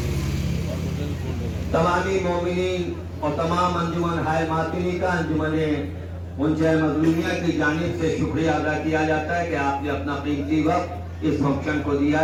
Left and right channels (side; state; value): both; identical; correlation 1.00